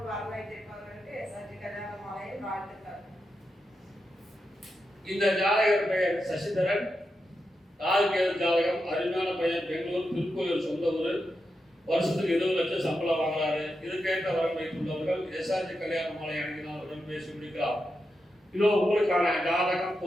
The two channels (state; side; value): normal; both; correlation 0.87